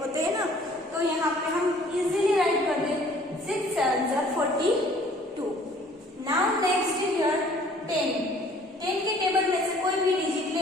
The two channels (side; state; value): both; normal; correlation 0.55